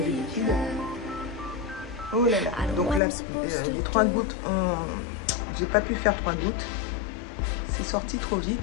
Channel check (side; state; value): right; drops out; at 3.0 s